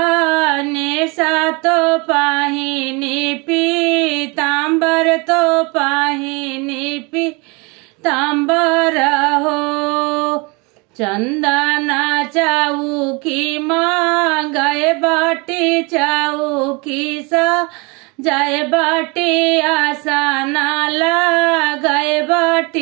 सा तो पाहिनी पीतांबर, तो पाहिनी पीतांबर हो। चंदना चाऊ की माँ गए बाटी, चाऊ की सा जाए बाटी, आशा नाला गए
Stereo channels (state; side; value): quieter; left; 28.6 dB